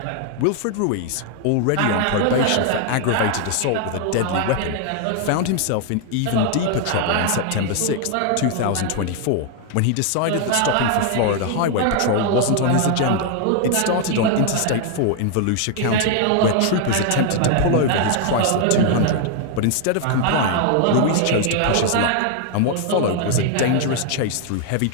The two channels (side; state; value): both; different; correlation 0.00